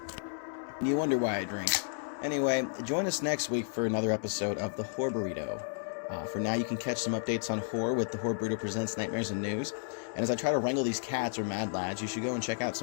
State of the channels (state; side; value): silent; right; digital silence